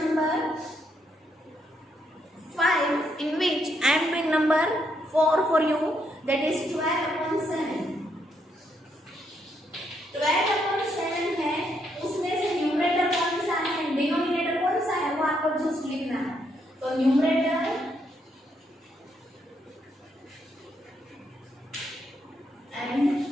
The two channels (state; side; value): normal; both; correlation 0.76